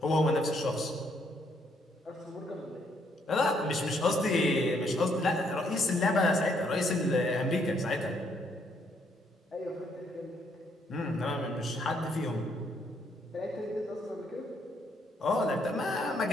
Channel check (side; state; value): both; normal; correlation 0.71